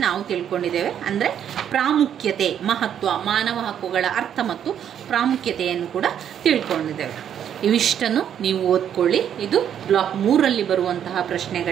ನಾವು ತಿಳ್ಕೊಂಡಿದ್ದೇವೆ. ಅಂದರೆ ಪ್ರಾಮುಖ್ಯತೆ, ಮಹತ್ವ, ಮಾನವ ಹಕ್ಕುಗಳ ಅರ್ಥ ಮತ್ತು ಪ್ರಾಮುಖ್ಯತೆಯನ್ನು ಕೂಡ ತಿಳ್ಕೊಂಡಿದ್ದೇವೆ. ಇವಿಷ್ಟನ್ನು ನೀವು ಓದ್ಕೊಳ್ಳಿ. ಇದು ಬ್ಲಾಕ್ 3ರಲ್ಲಿ ಬರುವಂತಹ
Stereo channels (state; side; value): quieter; left; 9.3 dB